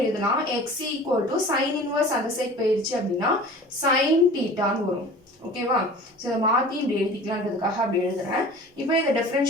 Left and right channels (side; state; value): both; normal; correlation 0.41